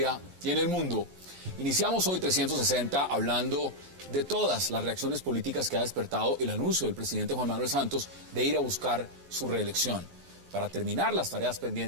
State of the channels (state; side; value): late; left; 11 ms